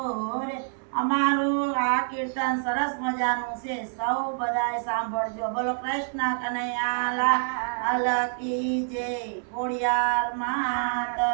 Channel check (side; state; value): left; silent; digital silence